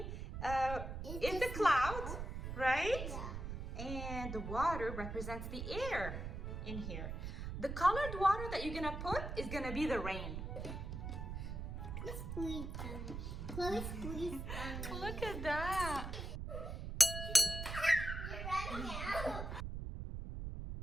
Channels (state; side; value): noise; right; rumble, 5 dB below the sound